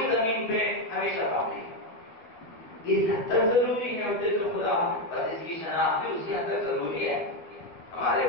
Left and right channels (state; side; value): late; right; 12 ms